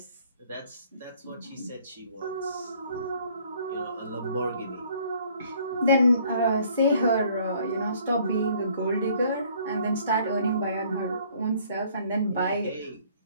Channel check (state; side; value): inverted; both; correlation -0.59